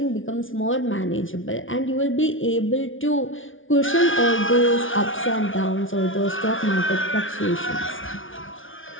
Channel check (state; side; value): late; right; 0.57 ms